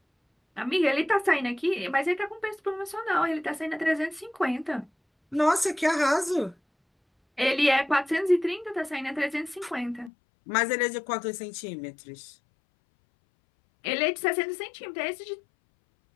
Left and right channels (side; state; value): right; drops out; at 10.1 s